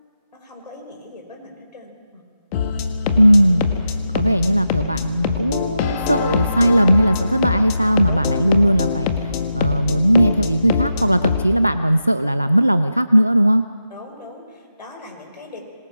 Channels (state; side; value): inverted; both; correlation -0.88